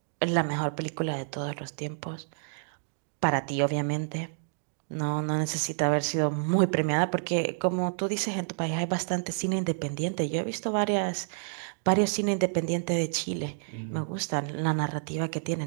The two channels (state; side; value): silent; left; digital silence